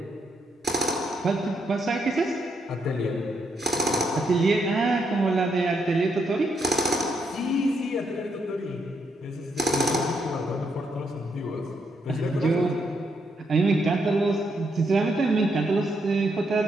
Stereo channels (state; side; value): normal; both; correlation 0.77